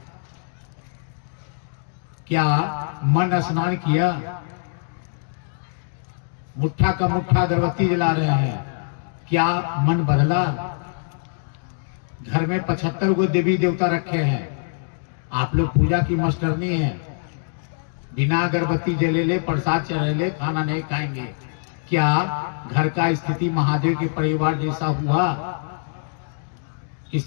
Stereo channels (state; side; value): silent; right; digital silence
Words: क्या मन स्नान किया? मुट्ठा का मुट्ठा अगरबत्ती जला रहे हैं। क्या मन बदला? घर में 75 गो देवी देवता रखे हैं। आप लोग पूजा की मास्टरनी है। बिना अगरबत्ती जले ले, प्रसाद चढ़े, खाना नहीं खाएंगे। क्या घर का स्थिति महादेव के परिवार जैसा हुआ?